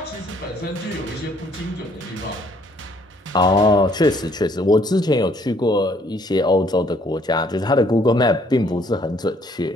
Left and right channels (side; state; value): both; normal; correlation 0.64